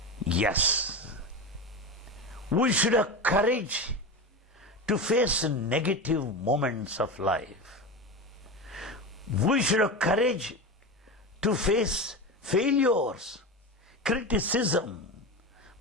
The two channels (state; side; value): normal; both; correlation 0.23